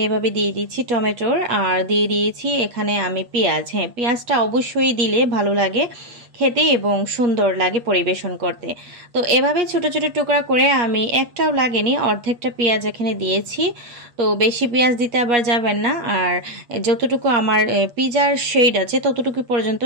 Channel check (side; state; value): left; late; 8.4 ms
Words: এভাবে দিয়ে দিচ্ছি টমেটোর, আর দিয়ে দিয়েছি এখানে আমি পেঁয়াজ। হ্যাঁ, পেঁয়াজটা অবশ্যই দিলে ভালো লাগে। খেতে এবং সুন্দর লাগে পরিবেশন করতে। তো এভাবে ছোট ছোট টুকরা করে আমি একটাও লাগেনি, অর্ধেকটা পেঁয়াজ এখানে দিয়েছি। তো বেশি পেঁয়াজ দিতে আবার যাবেন না, আর যতটুকু আমার পিজার শেড আছে ততটুকু পর্যন্ত